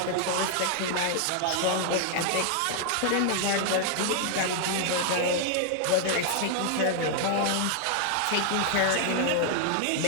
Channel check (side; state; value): both; different; correlation 0.00